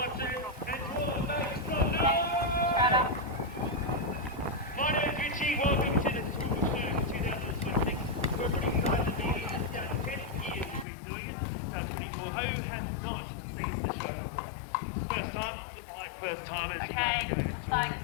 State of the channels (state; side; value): drops out; right; at 10.9 s